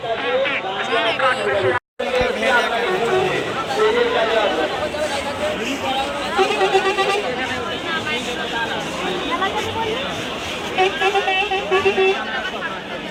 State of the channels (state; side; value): identical; both; correlation 1.00